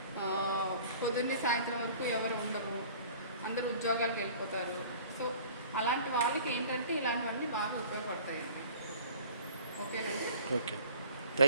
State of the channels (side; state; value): both; inverted; correlation -0.47